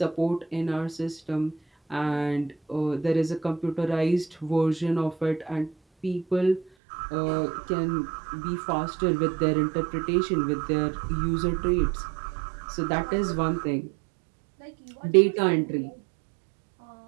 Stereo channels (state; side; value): drops out; left; at 6.7 s